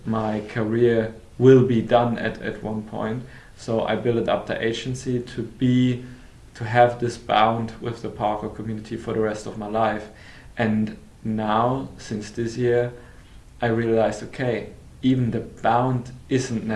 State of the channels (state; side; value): identical; both; correlation 1.00